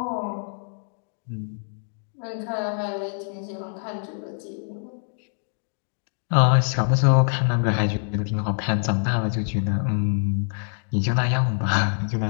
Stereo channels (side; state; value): right; silent; 62 dB below the other